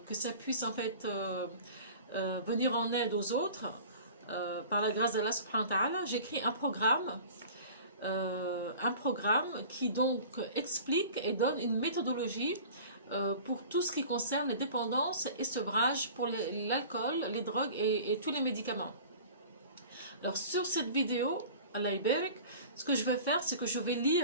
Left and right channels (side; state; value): both; inverted; correlation -0.42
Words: que ça puisse en fait venir en aide aux autres, par la grâce d'Allah subhanahu wa ta'ala, j'ai écrit un programme qui donc explique et donne une méthodologie pour tout ce qui concerne les dépendances et sevrage pour l'alcool, les drogues et tous les médicaments. Alors sur cette vidéo, Allah Ibarak, ce que je vais faire, c'est que je vais